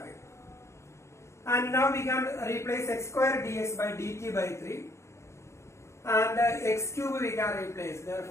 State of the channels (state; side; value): late; right; 0.13 ms